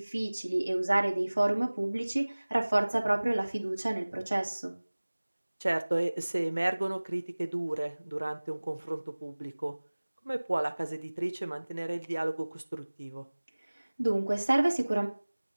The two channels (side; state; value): both; inverted; correlation -1.00